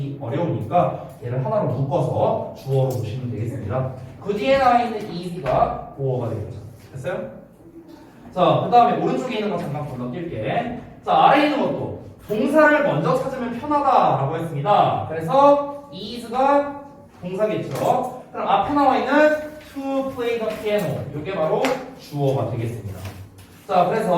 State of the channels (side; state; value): both; identical; correlation 1.00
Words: 어려우니까 얘를 하나로 묶어서 주어로 보시면 되겠습니다. 그 뒤에 나와 있는 is가 보어가 되겠죠. 됐어요? 자, 그 다음에 오른쪽에 있는 거 잠깐 건너뛸게. 자, 아래에 있는 것도 동사를 먼저 찾으면 편하다라고 했습니다. 그래서 is가 동사겠죠. 그럼 앞에 나와 있는 to play the piano 이게 바로 주어가 되겠습니다. 자,